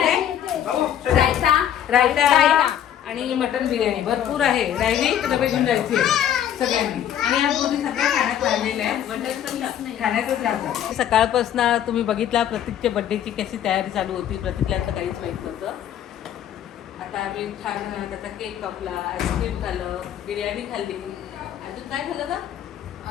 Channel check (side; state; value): right; quieter; 10.3 dB